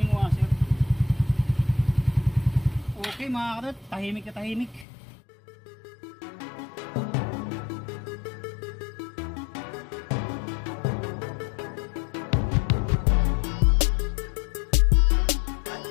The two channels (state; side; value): drops out; right; at 4.9 s